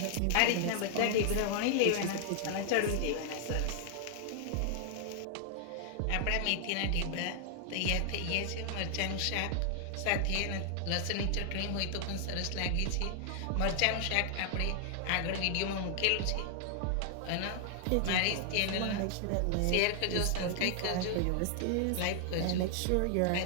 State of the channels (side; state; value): both; different; correlation 0.00